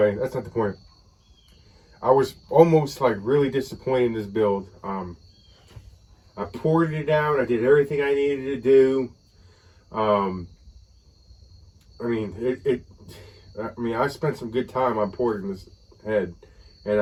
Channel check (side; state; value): both; identical; correlation 1.00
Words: that's not the point. I was almost like really disappointed in this build. I poured it out. I did everything I needed to do. I mean, I spent some good time on porting this head, and